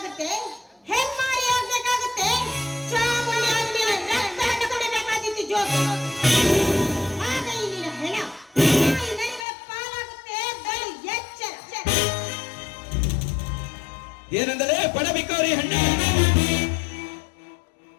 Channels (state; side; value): drops out; right; at 9.5 s